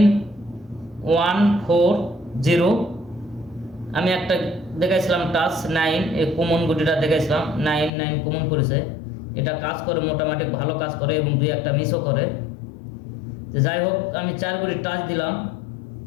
আমি একটা দেখাইছিলাম টাচ 9, এই কমন গুটিটা দেখাইছিলাম 99 কমন করেছে। এটা কাজ করে, মোটামুটি ভালো কাজ করে এবং 2-1টা মিসও করে। তো যাই হোক, আমি 4 গুটির টাচ দিলাম,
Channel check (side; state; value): right; drops out; at 7.9 s